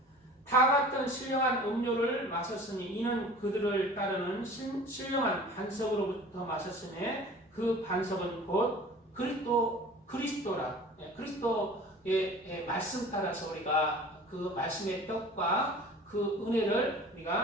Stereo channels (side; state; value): both; normal; correlation 0.43